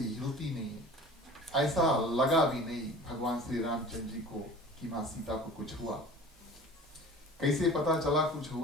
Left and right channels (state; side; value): normal; both; correlation 0.42